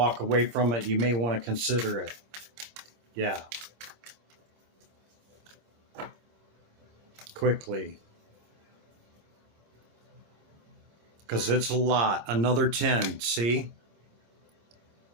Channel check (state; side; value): late; left; 26 ms